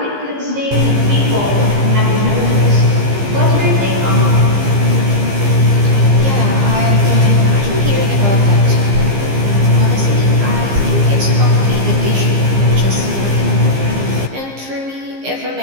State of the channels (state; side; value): late; left; 15 ms